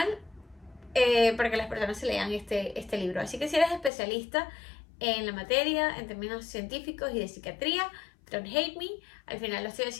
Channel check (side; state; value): right; drops out; at 3.9 s